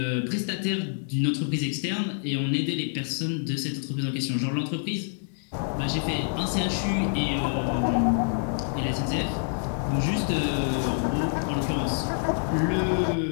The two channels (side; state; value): right; silent; digital silence